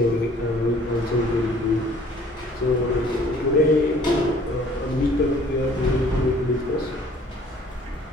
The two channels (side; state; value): both; normal; correlation 0.55